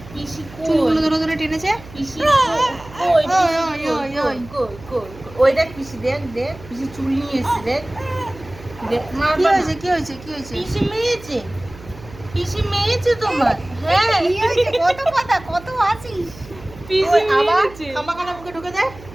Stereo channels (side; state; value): right; noise; hum, 18 dB below the sound